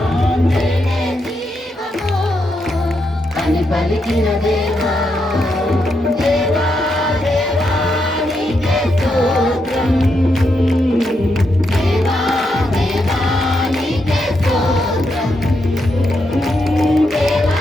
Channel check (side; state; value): both; normal; correlation 0.82